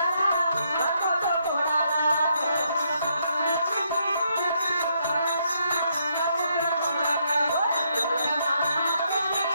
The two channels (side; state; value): both; inverted; correlation -0.75